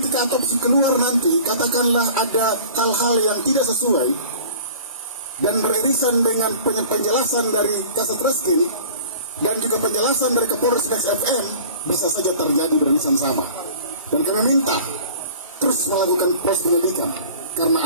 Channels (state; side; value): inverted; both; correlation -0.45